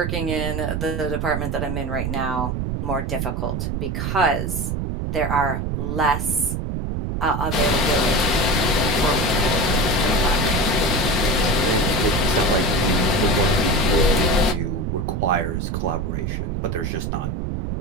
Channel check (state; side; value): noise; right; rumble, 2 dB below the sound